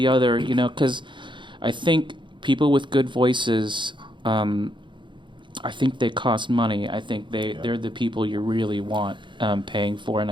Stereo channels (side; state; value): left; late; 0.23 ms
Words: other. Because I think people with good voices. I think they cost money. I think they're the people you really want paying for. And